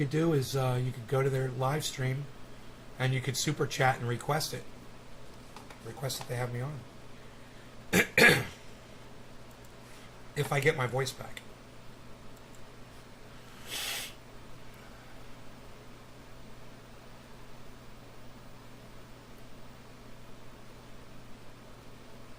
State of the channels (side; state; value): both; identical; correlation 1.00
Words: do is you could go to their live stream, and you could super chat and request it. Request that they have me on. If I get my voice back.